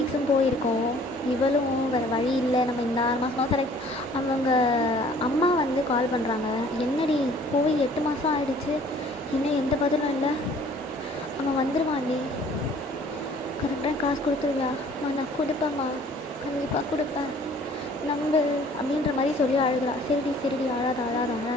போயிருக்கோம். இவளும் வேறு வழி இல்லை, நம்ம இந்த 6 மாதம் செலக்ட். அவங்க அம்மா வந்து கால் பண்ணுறாங்க. என்னடி போய் 8 மாதம் ஆகிடுச்சு, இன்னும் எந்த பதிலும் இல்லை. அவன் வந்துடுவான்டி, கரெக்டாக காசு கொடுத்துருவியாம்மா? நான் கொடுப்பேம்மா, கண்டிப்பாக கொடுப்பேன், நம்பு அப்படின்ற மாதிரி சொல்லி அழுகிறா. சரிடி அழாத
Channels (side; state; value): both; normal; correlation 0.54